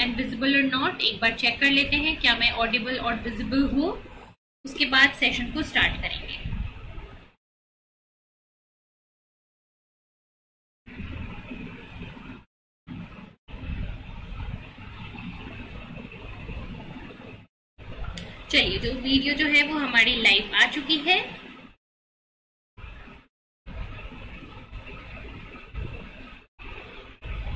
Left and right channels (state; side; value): identical; both; correlation 1.00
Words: visible or not. एक बार check कर लेते हैं क्या मैं audible और visible हूँ, उसके बाद सेशन को स्टार्ट करेंगे. चलिए, जो वीडियो जो है वो हमारी लाइव आ चुकी है.